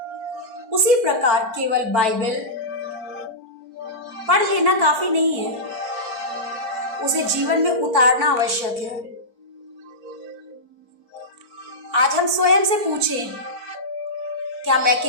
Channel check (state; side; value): late; left; 4.5 ms